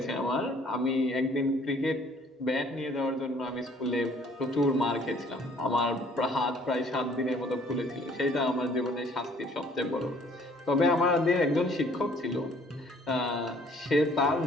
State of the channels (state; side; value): normal; both; correlation 0.58